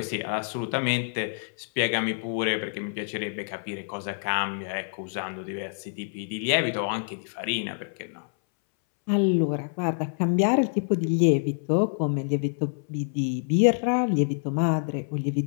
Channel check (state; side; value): silent; right; 60 dB below the other